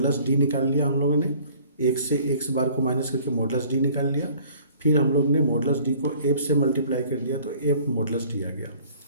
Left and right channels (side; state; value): both; inverted; correlation -0.53